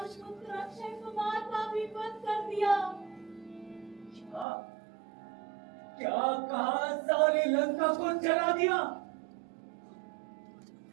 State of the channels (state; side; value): drops out; left; at 4.5 s